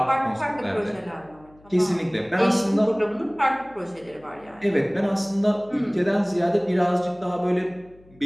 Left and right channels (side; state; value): left; noise; hum, 27 dB below the sound